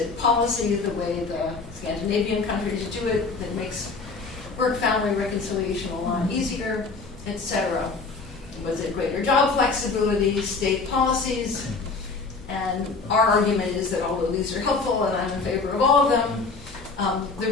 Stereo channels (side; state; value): right; quieter; 4.2 dB